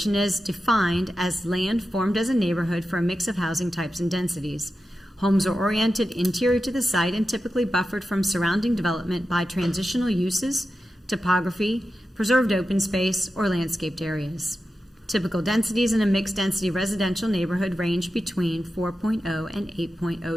is defined as land formed as a neighborhood for a mix of housing types and densities. Homes are oriented interior to the site and typically buffered from surrounding development by transitional uses, topography, preserved open space, or landscaped areas. Typical densities in a mixed-density residential neighborhood range between 4.0 and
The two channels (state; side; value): normal; both; correlation 0.91